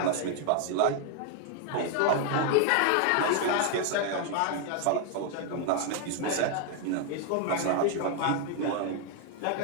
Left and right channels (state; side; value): different; both; correlation 0.00